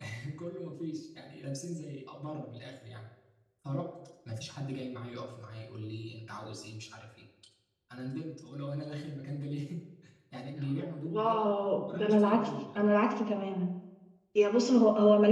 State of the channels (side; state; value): both; identical; correlation 1.00